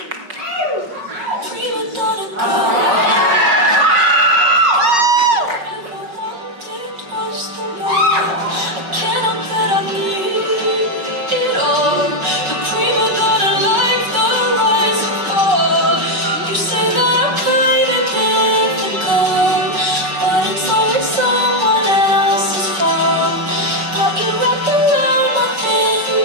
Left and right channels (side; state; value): left; late; 5.3 ms